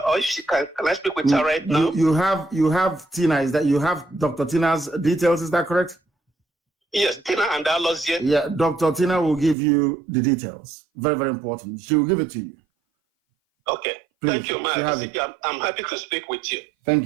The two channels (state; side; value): drops out; left; at 9.6 s